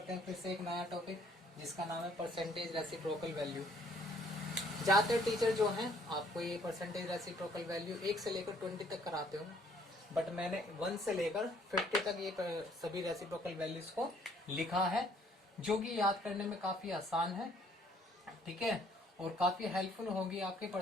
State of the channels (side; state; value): both; normal; correlation 0.62